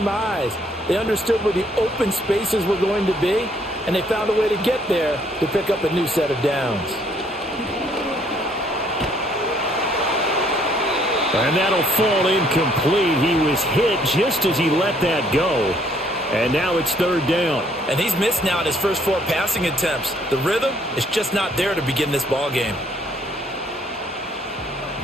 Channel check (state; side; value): normal; both; correlation 0.65